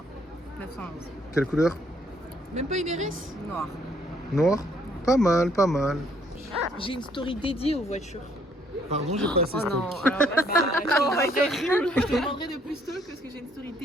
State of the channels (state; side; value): normal; both; correlation 0.66